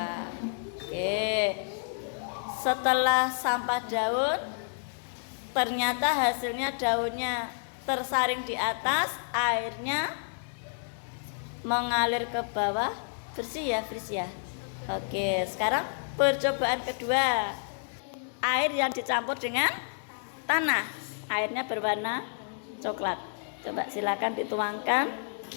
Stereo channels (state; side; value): silent; right; digital silence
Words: Oke. Setelah sampah daun, ternyata hasilnya daunnya tersaring di atas, airnya mengalir ke bawah. Bersih ya. Oke, sekarang percobaan kedua. Air yang dicampur dengan tanah. Airnya berwarna coklat. Coba silakan dituangkan.